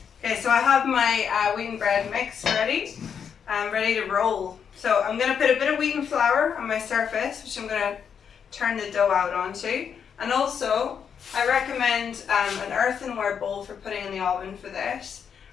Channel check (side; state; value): right; quieter; 7.3 dB